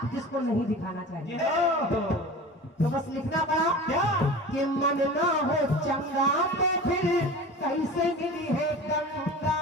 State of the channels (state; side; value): normal; both; correlation 0.35